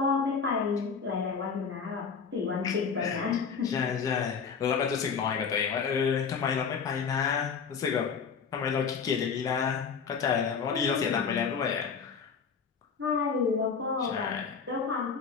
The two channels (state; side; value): quieter; right; 6.0 dB